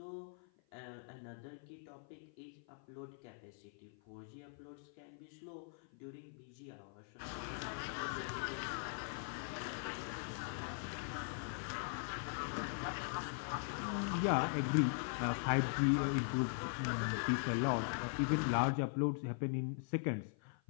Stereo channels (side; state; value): right; silent; 50 dB below the other